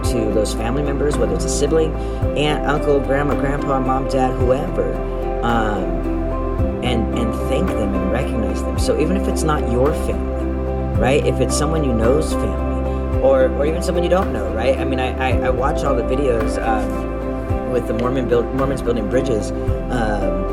to those family members, whether it's a sibling, aunt, uncle, grandma, grandpa, mom, dad, whoever, and thank them and recognize them. So even if it's not your family, right? If it's someone you know's family, or even someone you don't know, right? I mean, I watch all the videos with the Mormons building bridges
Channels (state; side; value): identical; both; correlation 1.00